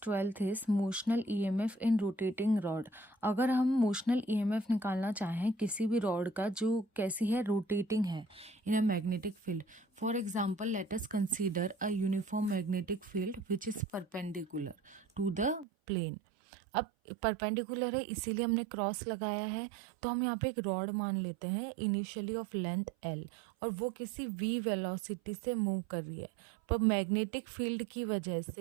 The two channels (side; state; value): left; drops out; at 15.7 s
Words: is motional EMF in rotating rod. अगर हम motional EMF निकालना चाहें किसी भी rod का जो कैसी है rotating है in a magnetic field. For example, let us consider a uniform magnetic field which is perpendicular to the plane. अब परपेंडिकुलर है इसीलिए हमने क्रॉस लगाया है, तो हम यहाँ पे एक रॉड मान लेते हैं इनिशियली ऑफ लेंथ एल और वो किसी v वेलोसिटी से मूव कर रही है। पर मैग्नेटिक फील्ड की वजह